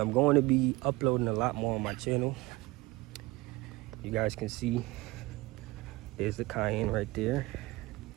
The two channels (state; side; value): quieter; left; 21.3 dB